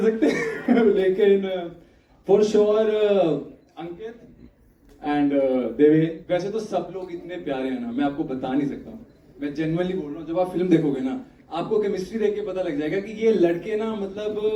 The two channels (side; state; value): both; identical; correlation 1.00